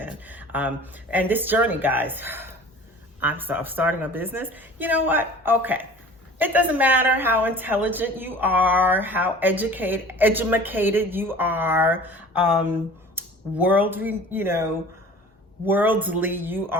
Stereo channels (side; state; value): both; normal; correlation 0.43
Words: And this journey, guys, I'm starting a business. You know what? Okay. It doesn't matter how intelligent you are, how educated you are, worldly you